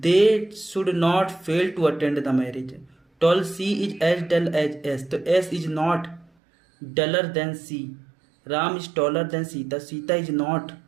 should not fail to attend the marriage. 12 C is as dull as S, तो S is not duller than C. Ram is taller than Sita, Sita is not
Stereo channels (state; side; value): drops out; left; at 6.3 s